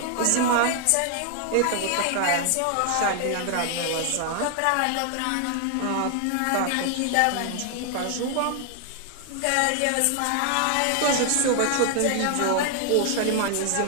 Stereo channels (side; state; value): both; different; correlation 0.00